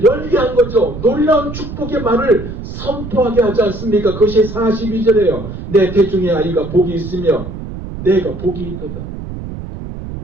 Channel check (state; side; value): noise; right; rumble, 10 dB below the sound